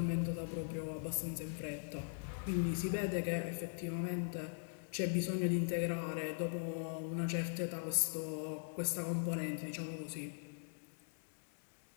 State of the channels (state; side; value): silent; right; digital silence